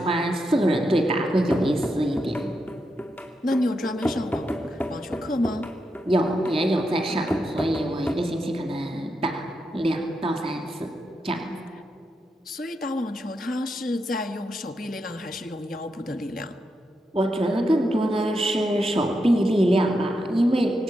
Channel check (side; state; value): both; normal; correlation 0.85